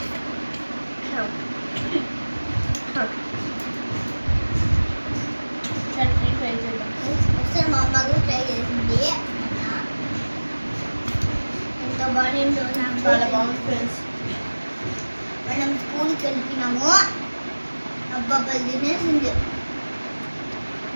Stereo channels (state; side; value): inverted; both; correlation -1.00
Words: చాలా బాగుంది ఫ్రెండ్స్. మనం స్కూల్కి వెళ్తున్నాము. అబ్బాయి తినేసింది.